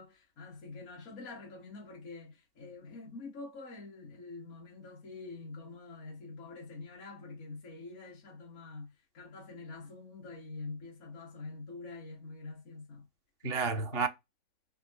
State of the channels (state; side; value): late; right; 3.5 ms